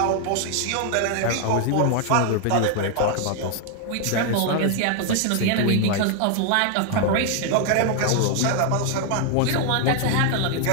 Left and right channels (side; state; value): both; different; correlation 0.00